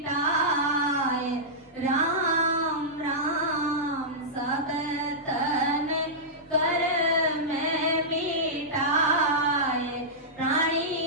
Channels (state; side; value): normal; both; correlation -0.13